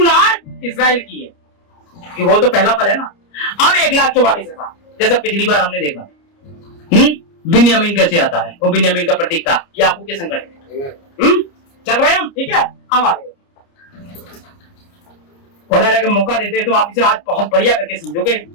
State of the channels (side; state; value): right; late; 29 ms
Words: इजराइल की है, कि वो तो पहला फल है ना। अब 1,44,000 जैसा पिछली बार हमने देखा। बिन्यामीन कैसे आता है? वो बिन्यामीन का प्रतीक था, याकूब के संकट में। चल रहे हैं हम, ठीक है? अब आगे खुदा अगर मौका देते हैं तो आप इसे आज बहुत बढ़िया करके समझोगे